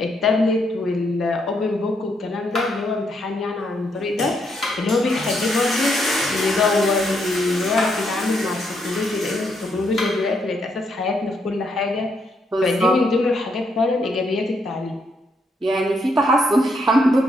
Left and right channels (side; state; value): both; normal; correlation 0.76